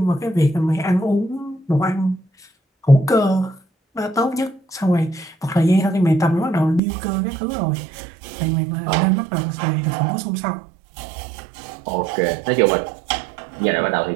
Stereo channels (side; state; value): left; drops out; at 6.8 s